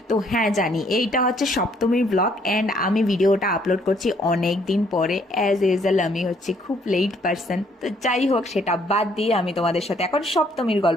তো হ্যাঁ, জানি এইটা হচ্ছে সপ্তমীর ব্লগ অ্যান্ড আমি ভিডিওটা আপলোড করছি অনেক দিন পরে। অ্যাজ ইউজুয়াল আমি হচ্ছে খুব লেট পারসন, তো যাই হোক সেটা বাদ দিয়ে আমি তোমাদের সাথে এখন সপ্তমীর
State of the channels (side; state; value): both; normal; correlation 0.66